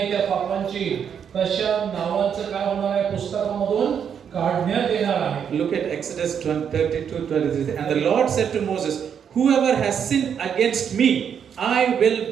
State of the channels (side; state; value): left; quieter; 7.8 dB